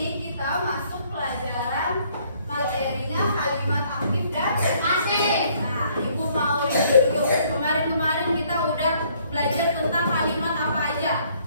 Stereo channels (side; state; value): both; inverted; correlation -0.64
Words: kita masuk pelajaran materinya kalimat aktif dan pasif. Nah, Ibu mau review dulu. Kemarin kita udah belajar tentang kalimat apa aja?